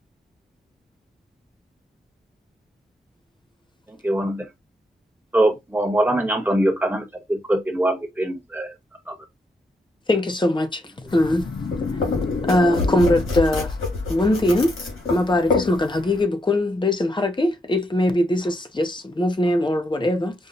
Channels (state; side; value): normal; both; correlation 0.79